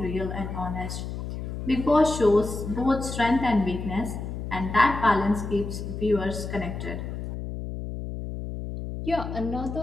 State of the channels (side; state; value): left; noise; hum, 6 dB below the sound